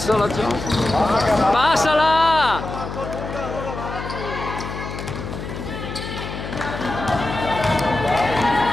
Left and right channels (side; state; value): left; noise; hum, 8 dB below the sound